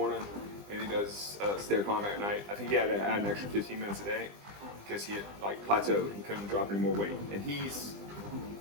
and he does stair climb at night. I think he had to add an extra 15 minutes a day because he had plateaued. He couldn't drop any more weight. And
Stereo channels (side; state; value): left; late; 20 ms